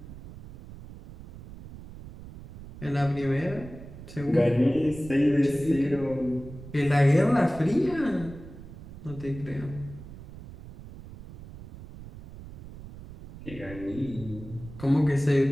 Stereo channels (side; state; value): right; noise; rumble, 15 dB below the sound